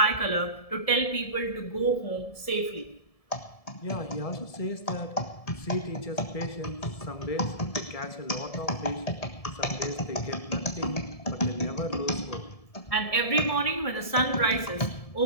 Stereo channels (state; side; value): late; right; 1.7 ms